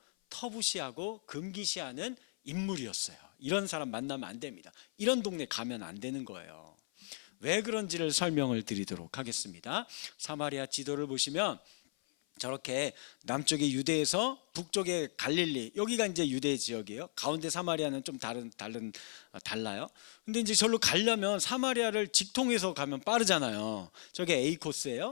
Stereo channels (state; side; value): silent; right; 54 dB below the other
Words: 터부시하고 금기시하는 인물이었어요. 이런 사람 만나면 안 됩니다. 이런 동네 가면 안 되는 거예요. 왜 그런지를 설명을 드리도록 하겠습니다. 사마리아 지도를 보시면 저렇게 남쪽의 유대에서 북쪽의 갈릴리, 여기가 이제 유대 지역이에요. 가운데 사마리아는 좀 달라요. 근데 이제 절로 가려면 사마리아를 직통해서 가면 빠르잖아요. 저게 A